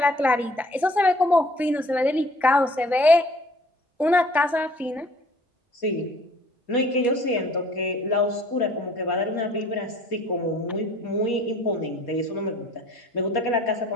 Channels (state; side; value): normal; both; correlation 0.54